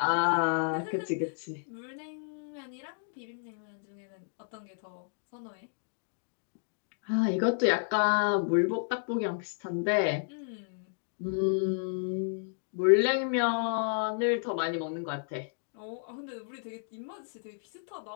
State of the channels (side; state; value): right; silent; digital silence